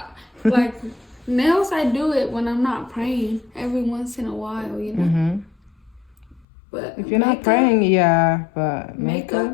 like. Nails, I do it when I'm not praying every once in a while, you know. But if you're not praying, but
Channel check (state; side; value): drops out; right; at 6.5 s